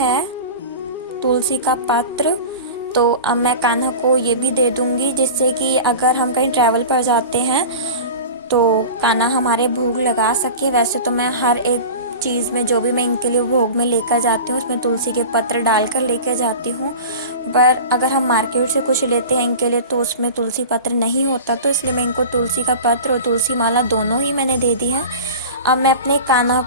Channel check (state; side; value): inverted; both; correlation -0.34